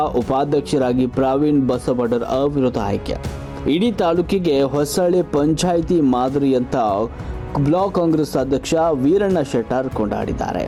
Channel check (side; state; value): both; identical; correlation 1.00